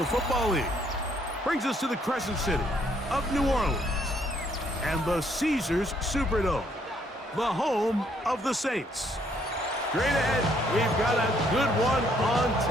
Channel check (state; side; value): normal; both; correlation 0.68